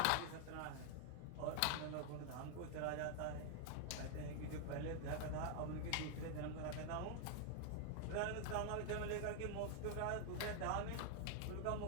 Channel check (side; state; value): both; different; correlation 0.00